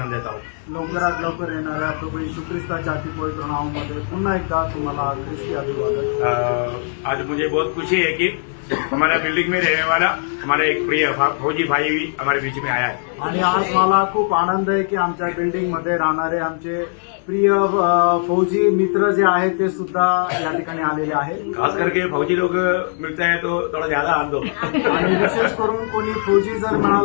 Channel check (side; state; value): right; silent; 63 dB below the other